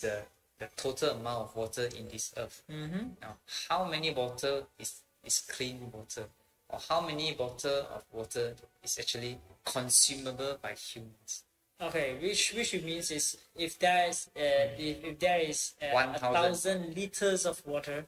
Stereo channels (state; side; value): identical; both; correlation 1.00